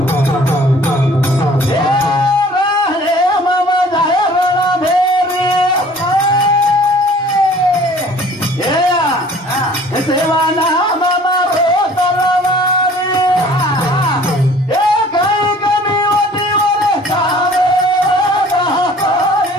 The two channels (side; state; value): both; normal; correlation 0.51